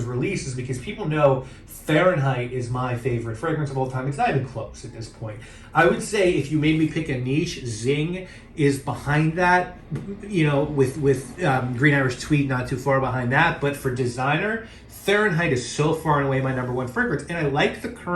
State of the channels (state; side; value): identical; both; correlation 1.00